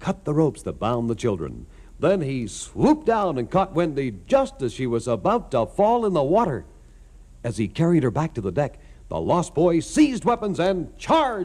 the ropes that bound the children. Then he swooped down and caught Wendy just as she was about to fall in the water. As he carried her back to the deck, the Lost Boys seized weapons and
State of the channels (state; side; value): identical; both; correlation 1.00